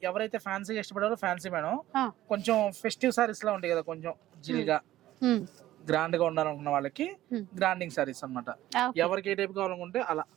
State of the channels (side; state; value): left; quieter; 14.5 dB